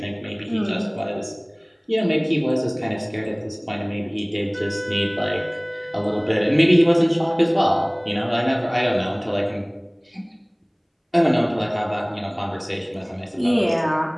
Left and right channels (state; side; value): identical; both; correlation 1.00